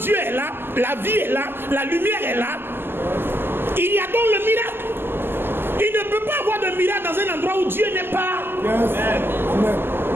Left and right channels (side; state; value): left; late; 0.10 ms